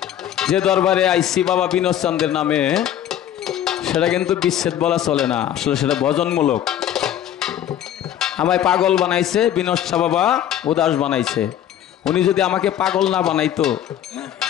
যে দরবারে আইসি বাবা বিনোদ চন্দ্রের নামে, সেটা কিন্তু বিচ্ছেদ বলা চলে না, আসলে সেটা ভজনমূলক। আমায় পাগল বানাইছে বিনোদ শাহ বাবা, উদাস বানাইছে। উনি যদি আমাকে পাগল না বানাইতো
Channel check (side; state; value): right; quieter; 10.9 dB